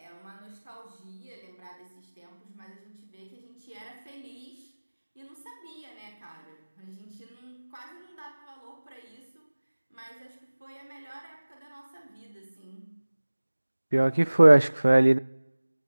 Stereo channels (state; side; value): inverted; both; correlation -1.00